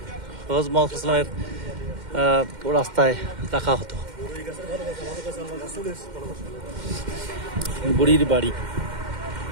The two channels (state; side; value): late; left; 2.1 ms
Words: হযরত মুহাম্মদ সাল্লাল্লাহু আলাইহি ওয়াসাল্লামের রাস্তায় রাখা হতো। বুড়ির বাড়ি।